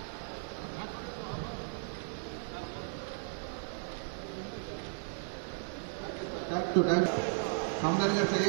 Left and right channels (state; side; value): silent; left; 54 dB below the other